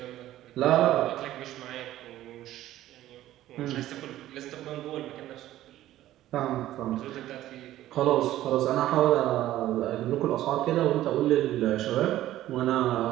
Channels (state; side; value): quieter; left; 14.0 dB